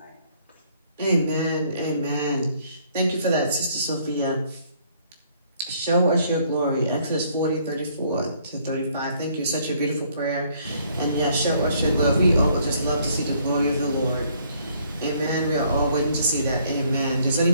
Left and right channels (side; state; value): both; inverted; correlation -0.64